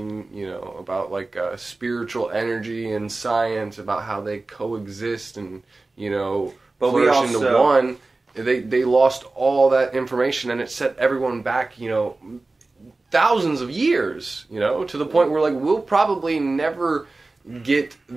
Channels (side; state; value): left; quieter; 3.3 dB